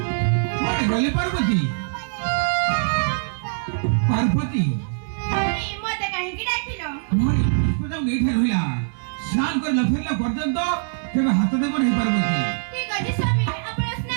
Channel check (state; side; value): silent; left; 60 dB below the other